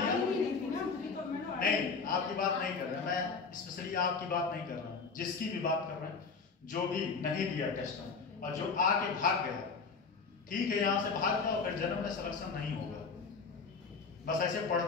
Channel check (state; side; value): quieter; right; 4.9 dB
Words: नहीं, आपकी बात नहीं कर रहा मैं, स्पेशली आपकी बात नहीं कर रहा हूँ, जिसकी भी बात कर रहे हैं। जो भी नहीं दिया टेस्ट में और जो आके भाग गया, ठीक है, यहाँ से भाग जाओ, फिर जन्म में सिलेक्शन नहीं होगा। बस ऐसे